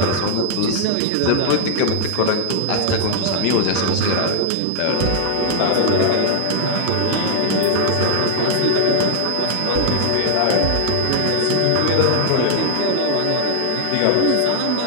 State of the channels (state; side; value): different; both; correlation 0.00